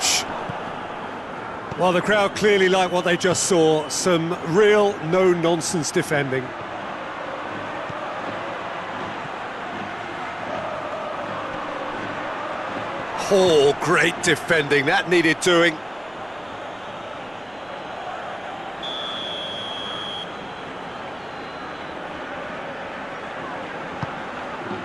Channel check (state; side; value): noise; right; rumble, 28 dB below the sound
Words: Well, the crowd clearly like what they just saw. Some real no-nonsense defending. Oh, great defending. That needed doing.